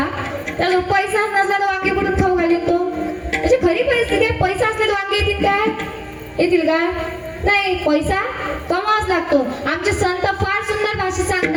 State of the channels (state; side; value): identical; both; correlation 1.00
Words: त्याला पैसा नसला तर वांगे कुठून खाऊ घालीन तो? म्हणजे खरी परिस्थिती आहे. पैसा असला तर वांगे येतील काय? येतील का? नाही, पैसा कमावाच लागतो. आमचे संत फार सुंदर भाषेत